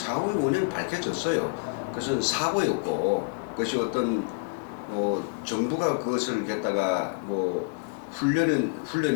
원인은 밝혀졌어요. 그것은 사고였고, 그것이 어떤, 정부가 그것을 갖다가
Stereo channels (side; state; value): right; quieter; 35.0 dB